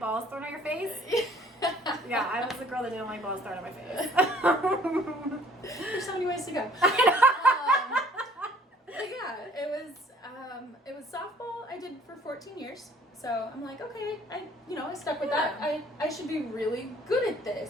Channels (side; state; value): both; normal; correlation 0.56